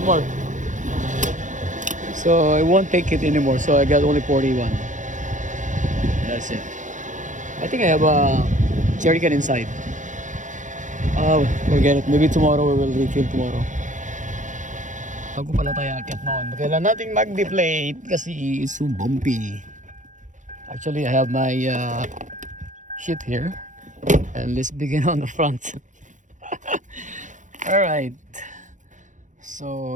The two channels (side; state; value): left; late; 0.36 ms